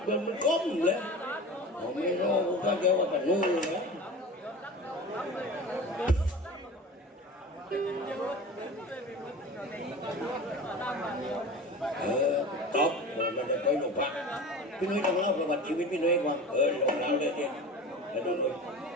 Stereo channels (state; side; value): normal; both; correlation 0.34